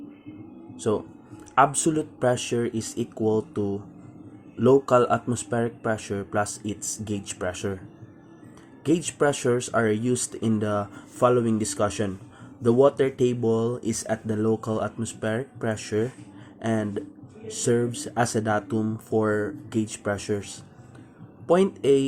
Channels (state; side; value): identical; both; correlation 1.00